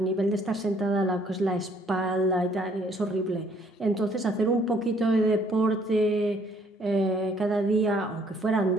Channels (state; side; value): normal; both; correlation 0.63